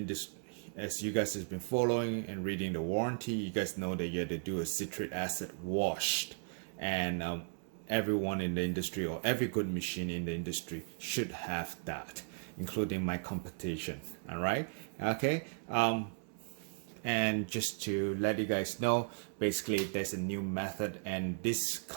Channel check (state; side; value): silent; left; 54 dB below the other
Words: as you guys have been following and reading the warranty, you guys know that you have to do a citric acid washed, and everyone in the industry or every good machine in the industry should have that, including my competition. All right, okay. And just to let you guys know, basically there's a new method, and this